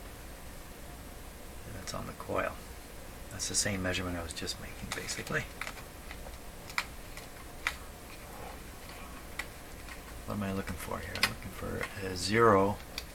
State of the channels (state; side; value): identical; both; correlation 1.00